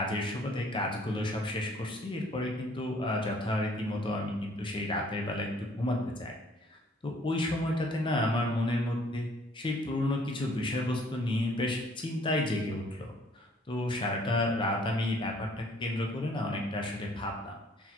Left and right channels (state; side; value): normal; both; correlation 0.59